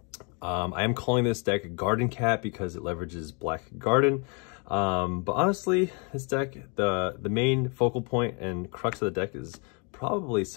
I am calling this deck Garden Cat because it leverages Black Garden. But honestly, this deck, the main focal point and crux of the deck is probably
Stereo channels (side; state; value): right; quieter; 35.0 dB